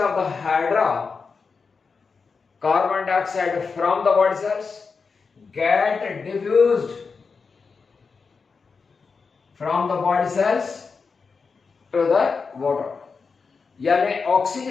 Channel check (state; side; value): quieter; right; 5.0 dB